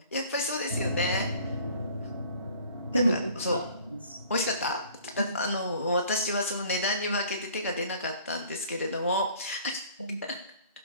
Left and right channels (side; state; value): both; inverted; correlation -0.52